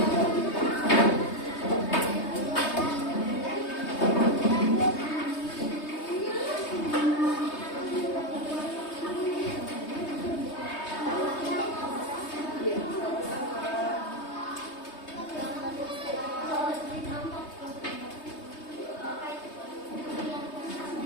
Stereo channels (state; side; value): late; right; 3.2 ms